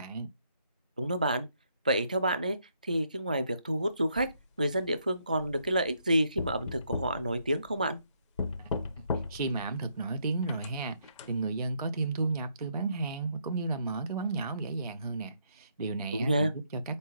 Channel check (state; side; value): inverted; both; correlation -0.74